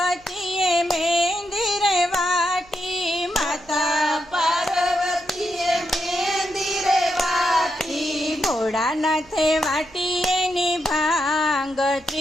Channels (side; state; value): right; noise; hum, 28 dB below the sound